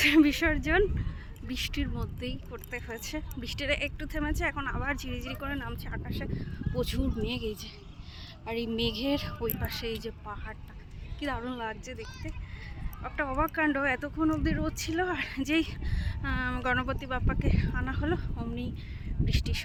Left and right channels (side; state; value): both; identical; correlation 1.00